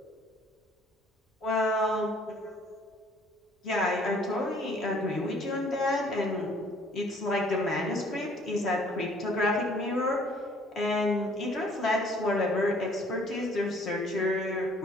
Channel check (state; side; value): normal; both; correlation 0.58